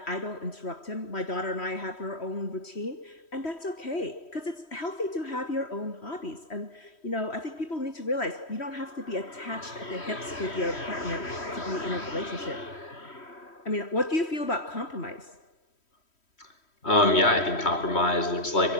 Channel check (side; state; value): right; late; 3.1 ms